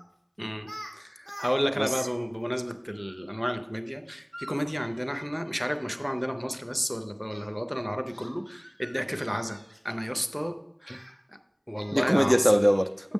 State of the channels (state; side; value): identical; both; correlation 1.00